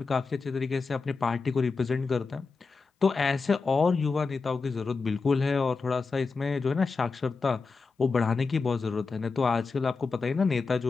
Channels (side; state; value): right; quieter; 4.5 dB